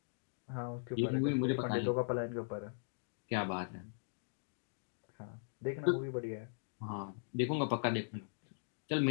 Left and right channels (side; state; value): right; silent; digital silence